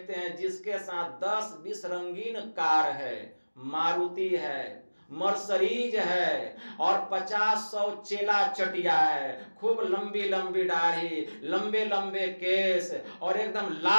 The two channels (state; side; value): inverted; both; correlation -1.00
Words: हैं जिसके साथ 10-20 रंगीन कार है, मारुति है, मर्सरीज है, और 50-100 चेला चटिया है, खूब लंबी लंबी दाढ़ी, लंबे लंबे केस, और एकदम